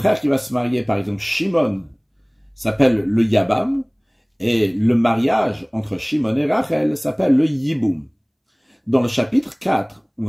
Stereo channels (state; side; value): identical; both; correlation 1.00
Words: qui va se marier, par exemple Shimon, s'appelle le Yabam, et le mariage entre Shimon et Rachel s'appelle le Yiboum. Dans le chapitre 4, on